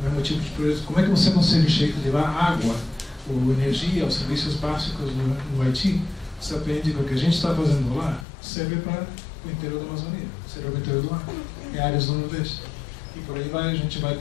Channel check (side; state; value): right; drops out; at 8.2 s